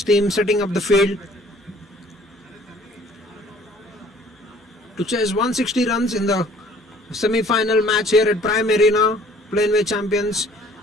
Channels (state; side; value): normal; both; correlation 0.55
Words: team, setting up the field to chase 160 runs in the semi-final match here at Prime Arena. Planway champions,